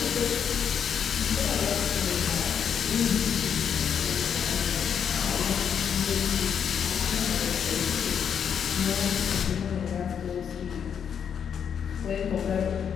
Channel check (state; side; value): quieter; right; 7.8 dB